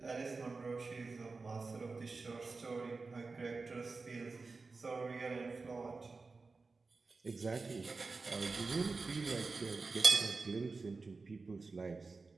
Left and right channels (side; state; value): left; quieter; 4.0 dB